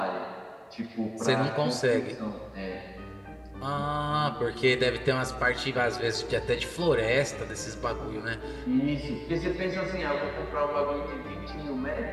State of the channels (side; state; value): both; identical; correlation 1.00